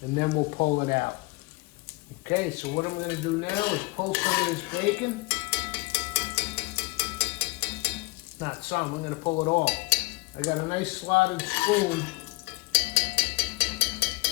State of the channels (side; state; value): right; quieter; 24.1 dB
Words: And then we'll pull it out. Okay, so what I'm going to do now is pull some of this bacon. Not some, I'm going to pull it all. I got a nice slotted spoon